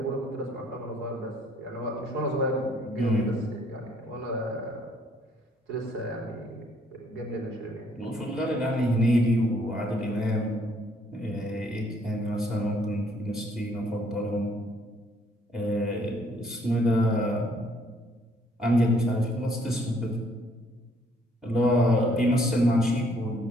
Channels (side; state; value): both; normal; correlation 0.65